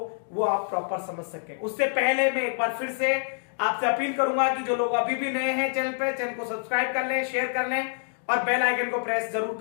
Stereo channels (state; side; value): silent; right; 60 dB below the other